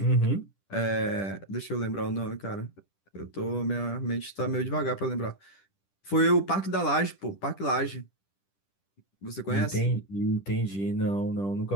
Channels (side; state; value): right; late; 10 ms